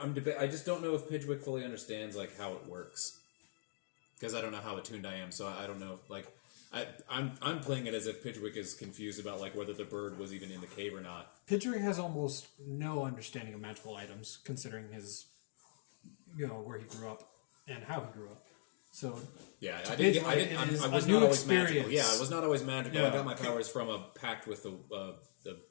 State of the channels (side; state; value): right; silent; digital silence